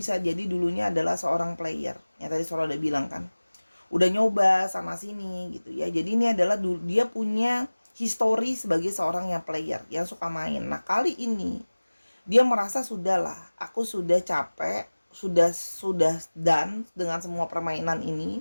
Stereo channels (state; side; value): inverted; both; correlation -1.00